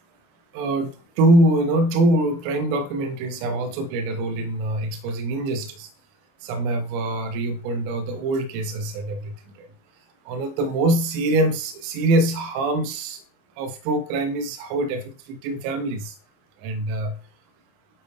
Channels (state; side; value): late; left; 30 ms